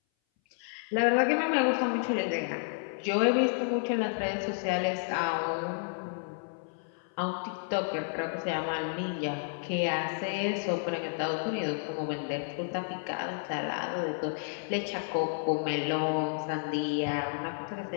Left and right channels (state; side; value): silent; right; 57 dB below the other